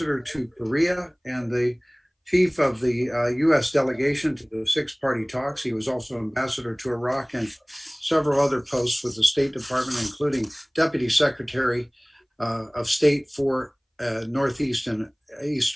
to Korea and the chief of the U.S. delegation to the 6-party talks. He was also ambassador to Iraq and several other posts with the State Department, including Deputy Secretary of State for Northeast and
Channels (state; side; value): identical; both; correlation 1.00